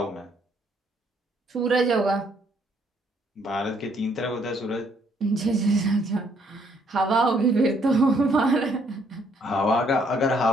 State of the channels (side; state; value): both; normal; correlation 0.68